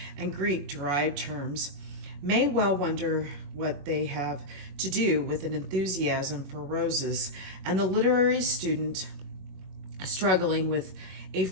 and Greek derived terms, may well wonder what they have to do with an enthusiasm for roses, and the literary student struggling with a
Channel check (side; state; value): left; late; 21 ms